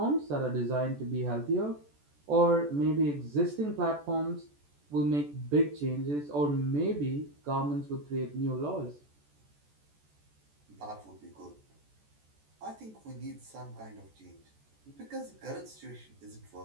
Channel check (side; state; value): left; late; 14 ms